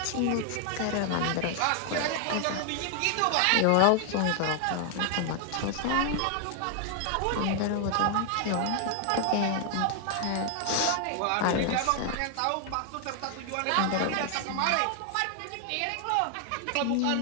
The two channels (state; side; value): different; both; correlation 0.00